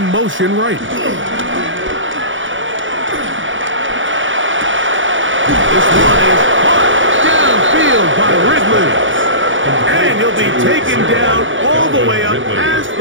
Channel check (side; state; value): left; late; 0.56 ms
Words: motion right. This one is caught downfield by Ridley. And he'll be taken down all the way up past